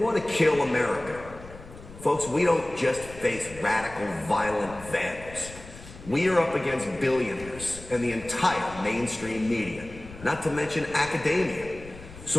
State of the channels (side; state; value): left; noise; rumble, 17 dB below the sound